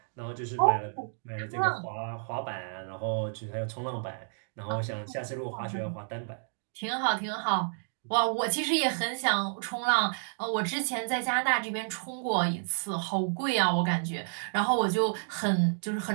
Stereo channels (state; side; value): silent; left; digital silence